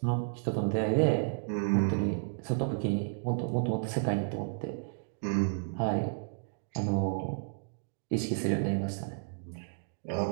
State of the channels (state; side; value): silent; left; digital silence